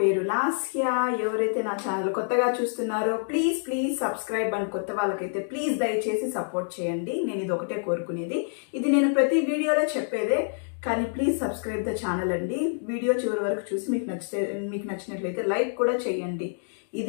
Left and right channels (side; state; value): right; silent; digital silence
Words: లాస్య. ఎవరైతే నా ఛానల్ కొత్తగా చూస్తున్నారో ప్లీజ్ సబ్స్క్రైబ్ అని, కొత్త వాళ్ళకైతే ప్లీజ్ దయచేసి సపోర్ట్ చేయండి. నేను ఇది ఒకటే కోరుకునేది. ఇది నేను ప్రతి వీడియోలో చెప్పేదే, కానీ ప్లీజ్ సబ్స్క్రైబ్ ద ఛానల్ అండి. వీడియో చివరి వరకు చూసి మీకు నచ్చినట్లయితే లైక్ కూడా చేయండి.